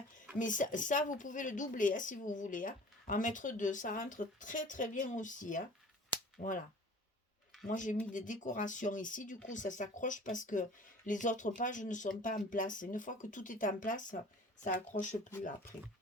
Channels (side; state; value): both; normal; correlation 0.45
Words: Mais ça, vous pouvez le doubler si vous voulez. En mettre 2, ça rentre très très bien aussi. Voilà. Moi, j'ai mis des décorations ici. Du coup, ça s'accroche parce que les autres pages ne sont pas en place. Une fois que tout est en place, ça accroche plus après.